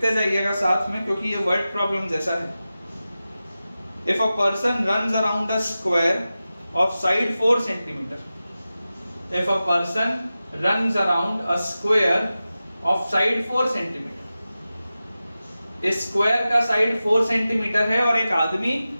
जाइएगा साथ में क्योंकि ये वर्ड प्रॉब्लम जैसा है। If a person runs around a square of side 4 centimetre, if a person runs around a square of side 4 centimetre, इस स्क्वायर का साइड 4 सेंटीमीटर है और एक आदमी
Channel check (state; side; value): inverted; both; correlation -0.94